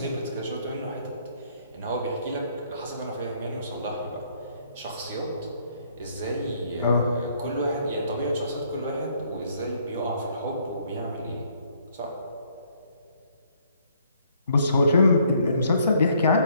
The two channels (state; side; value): inverted; both; correlation -0.66